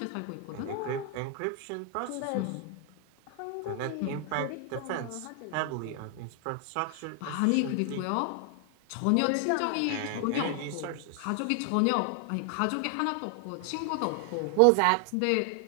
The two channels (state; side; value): different; both; correlation 0.00